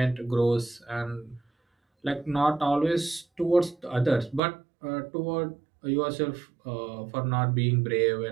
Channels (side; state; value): left; drops out; at 4.4 s